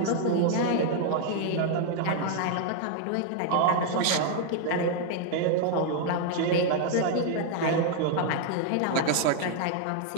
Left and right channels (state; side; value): different; both; correlation 0.00